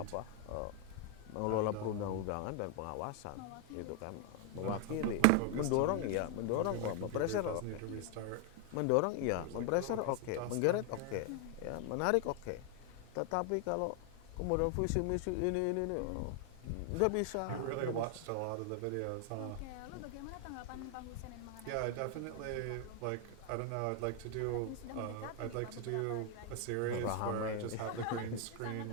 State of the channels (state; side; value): different; both; correlation 0.00